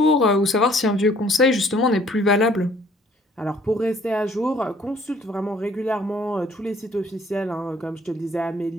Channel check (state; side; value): normal; both; correlation 0.59